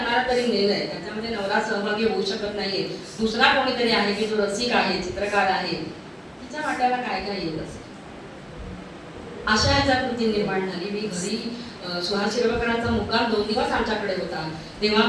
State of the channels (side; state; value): both; identical; correlation 1.00